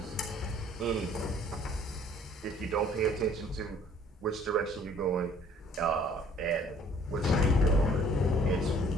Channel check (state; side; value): normal; both; correlation 0.57